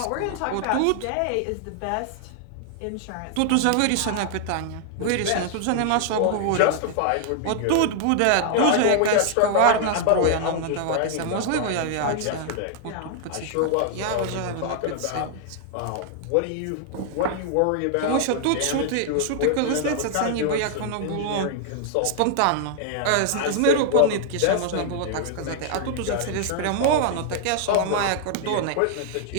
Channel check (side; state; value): both; different; correlation -0.01